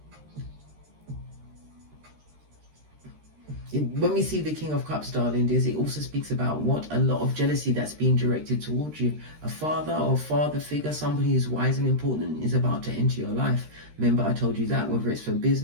When we see the King of Cups, darling, it also speaks about what? A lot of jealousy that's being directed towards you. A father or father figure, somebody who's wise and important, is about to enter your life. Remember, I told you that, whether it's for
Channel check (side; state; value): left; late; 13 ms